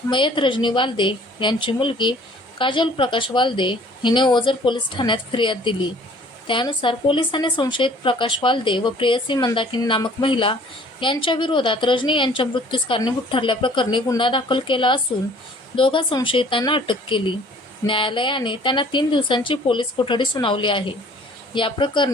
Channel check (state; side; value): normal; both; correlation 0.53